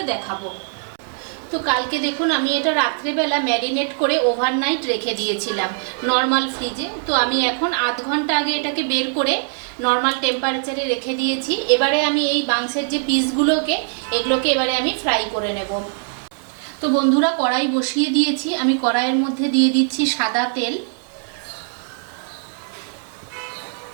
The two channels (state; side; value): silent; left; 61 dB below the other